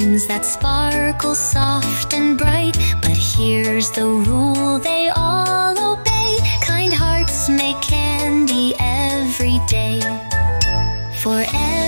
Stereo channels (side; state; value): both; inverted; correlation -1.00